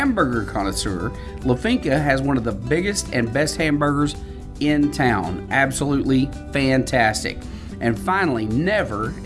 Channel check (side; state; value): both; identical; correlation 1.00